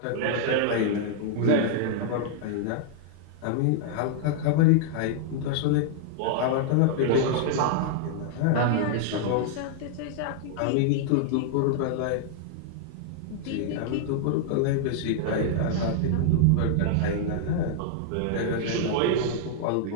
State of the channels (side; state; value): both; different; correlation -0.01